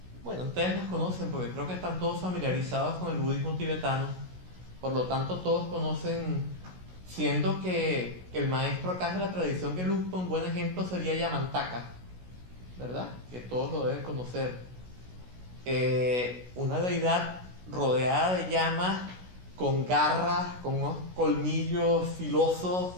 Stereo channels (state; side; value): late; left; 16 ms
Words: Bueno, ustedes las conocen porque creo que están todos familiarizados con el budismo tibetano. Por lo tanto, todos conocen, siendo que el maestro acá de la tradición Gelugpa, un buen ejemplo sería Yamantaka, ¿verdad? Que todos lo deben conocer. Una deidad rodeada de llamas, con garras, con unos colmillos filosos,